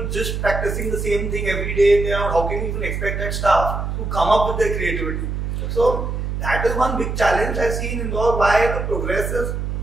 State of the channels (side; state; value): right; noise; hum, 3 dB below the sound